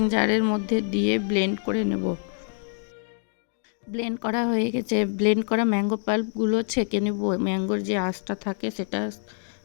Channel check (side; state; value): right; silent; 58 dB below the other